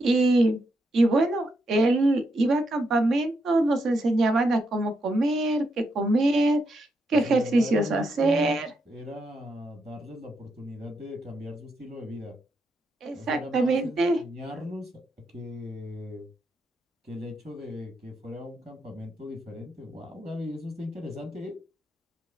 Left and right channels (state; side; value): normal; both; correlation 0.81